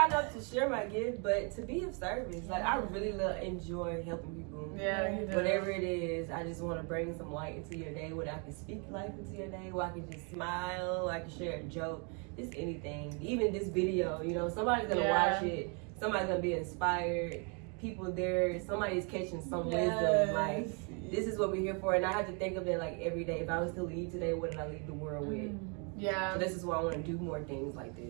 up to share my gift, but to be of service. Like, I really enjoy helping people. Yeah, you do. Whatever it is, I just want to bring some light into your day, where I can speak life into your day, where I can just smile, I can share a joke, just anything. Even this video, you know, somebody's going to watch it, somebody's going to be inspired, people there, somebody's catching some wisdom. Like, this is what we're here for, and I have to think of it like every day. If I was to leave today, what did I leave the world with? Yeah. So this is why I want to do more things like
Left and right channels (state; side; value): quieter; left; 35.7 dB